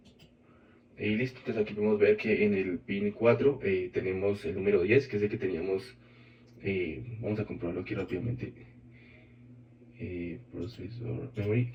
Y listo, entonces aquí podemos ver que en el pin 4 tenemos el número 10, que es el que teníamos. Vamos a comprobarlo aquí rápidamente. Processor memory.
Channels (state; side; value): identical; both; correlation 1.00